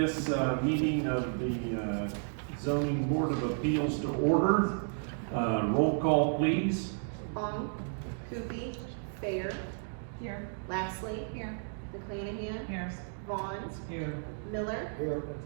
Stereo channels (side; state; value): left; silent; digital silence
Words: meeting of the Zoning Board of Appeals to order. Roll call, please. Long, Coopy, Fair, Here. Lastly, Here. McClanahan, Here. Vaughn, Here. Miller, Here.